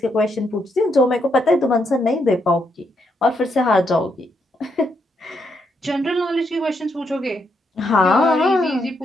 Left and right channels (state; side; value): normal; both; correlation 0.78